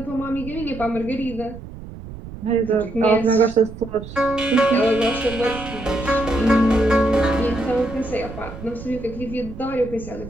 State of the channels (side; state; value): right; noise; rumble, 13 dB below the sound